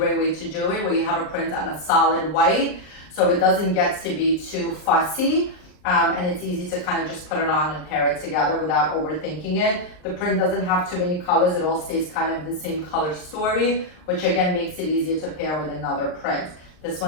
way to do it, where you have a print on a solid white, so it doesn't get to be too fussy, and it's easy to kind of just put it on and pair it together without overthinking it. The print doesn't have too many colors. It all stays kind of the same color story, which again makes it easier to pair with another print. This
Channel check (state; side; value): late; right; 39 ms